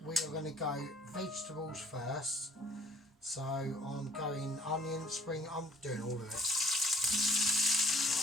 we are going to go vegetables first. So I'm going onion, spring, I'm doing all of it.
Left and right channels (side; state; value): both; normal; correlation 0.57